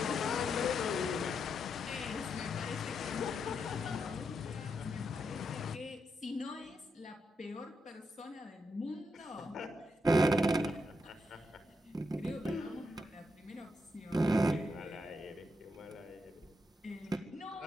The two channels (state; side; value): normal; both; correlation 0.82